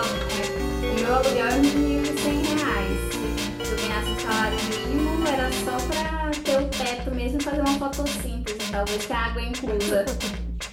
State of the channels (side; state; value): both; identical; correlation 1.00